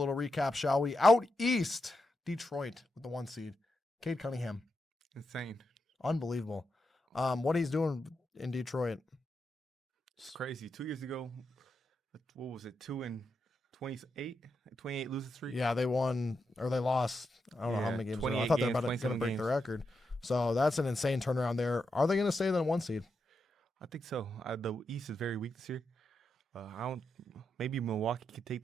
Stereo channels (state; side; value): normal; both; correlation 0.85